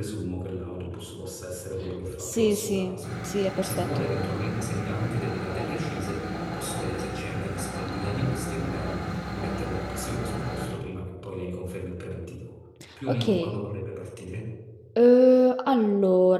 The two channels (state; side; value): identical; both; correlation 1.00